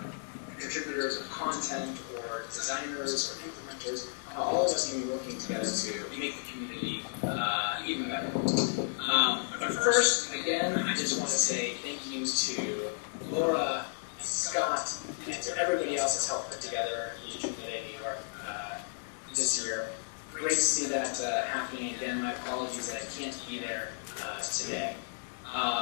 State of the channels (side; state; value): right; silent; 56 dB below the other